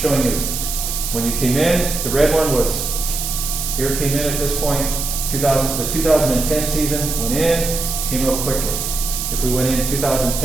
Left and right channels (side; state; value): right; noise; hiss, 4 dB below the sound